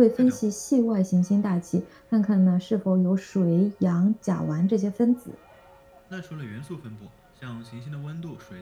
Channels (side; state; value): both; identical; correlation 1.00